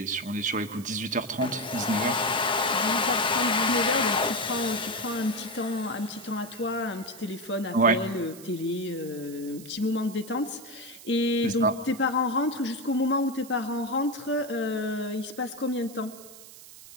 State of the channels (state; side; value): noise; right; hiss, 18 dB below the sound